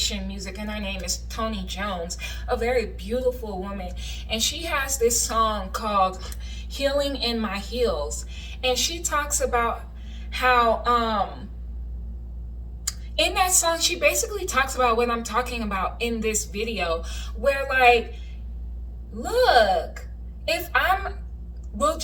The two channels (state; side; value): identical; both; correlation 1.00